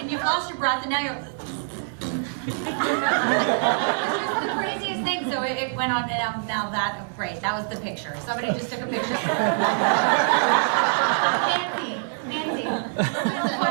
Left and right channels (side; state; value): left; silent; digital silence